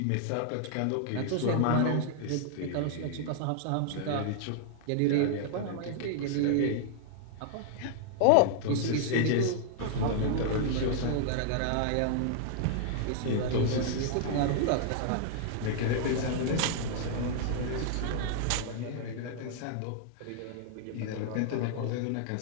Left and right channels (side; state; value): both; different; correlation -0.01